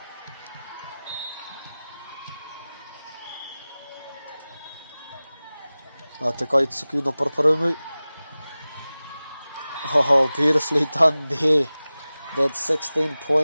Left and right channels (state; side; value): inverted; both; correlation -0.97